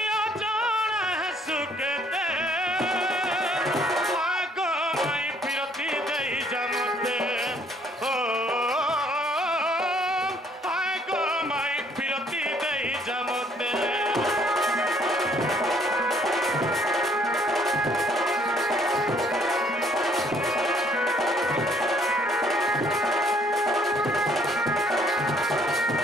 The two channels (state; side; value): normal; both; correlation 0.63